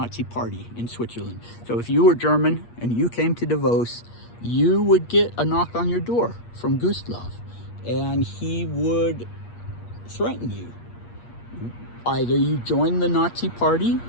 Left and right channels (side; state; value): right; late; 8.5 ms